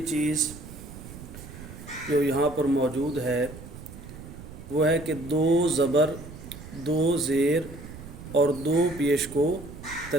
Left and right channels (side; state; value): right; noise; rumble, 14 dB below the sound